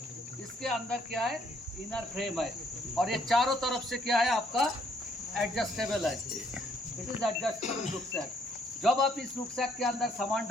इसके अंदर क्या है? इनर फ्रेम है और ये चारों तरफ से क्या है आपका? एडजस्टेबल है। It is adjustable rucksack. जब आप इस रुकसैक के अंदर सामान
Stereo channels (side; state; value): both; normal; correlation 0.68